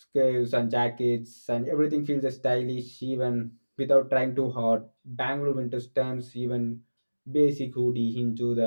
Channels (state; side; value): inverted; both; correlation -1.00